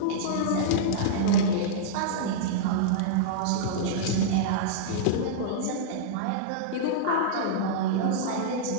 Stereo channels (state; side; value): different; both; correlation -0.03